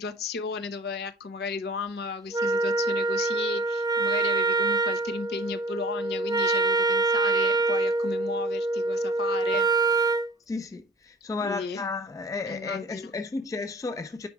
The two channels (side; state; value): both; normal; correlation 0.45